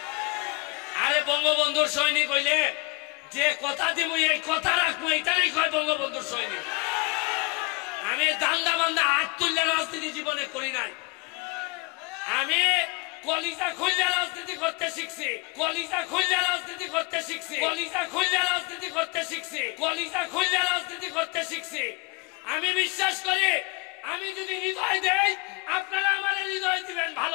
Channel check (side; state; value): right; quieter; 27.1 dB